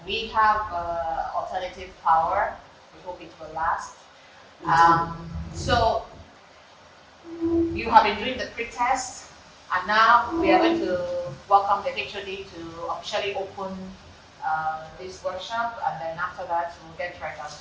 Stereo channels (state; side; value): identical; both; correlation 1.00